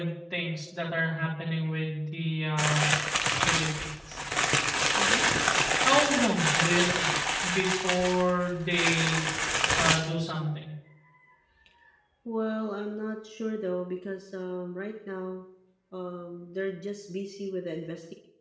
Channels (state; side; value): identical; both; correlation 1.00